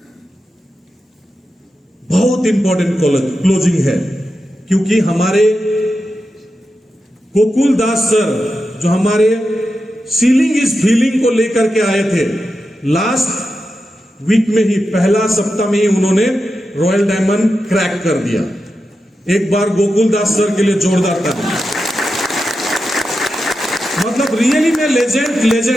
बहुत इंपॉर्टेंट क्लोजिंग है, क्योंकि हमारे गोकुल दास सर जो हमारे सीलिंग इज फीलिंग को लेकर के आए थे, लास्ट वीक में ही, पहला सप्ताह में ही उन्होंने रॉयल डायमंड क्रैक कर दिया। एक बार गोकुल दास सर के लिए जोरदार ताली। मतलब रियली में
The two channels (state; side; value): normal; both; correlation 0.89